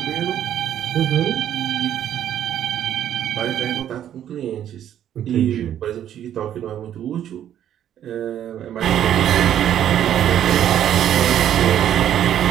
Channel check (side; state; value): left; quieter; 10.6 dB